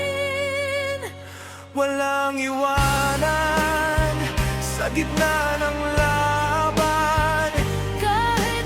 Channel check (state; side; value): identical; both; correlation 1.00